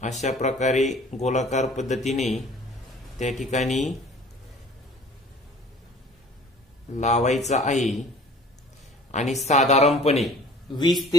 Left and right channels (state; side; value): normal; both; correlation 0.48